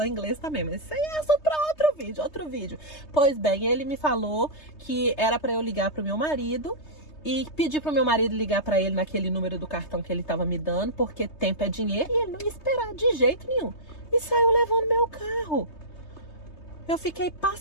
inglês também, mas isso aí é só pra outro vídeo. Pois bem, ele me falou que era pra eu ligar pro meu marido e pedir pro meu marido ligar pra ele naquele número do cartão que ele tava me dando, porque tempo é dinheiro e ele não ia esperar de jeito nenhum. E saiu levando meu carro. Eu fiquei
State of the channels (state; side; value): late; right; 3.3 ms